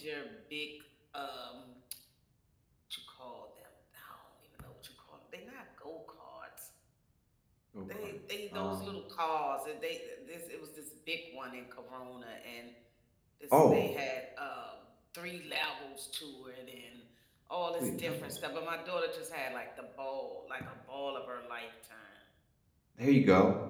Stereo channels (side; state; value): both; identical; correlation 1.00